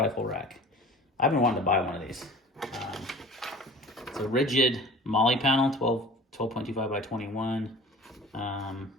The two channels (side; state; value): both; normal; correlation 0.42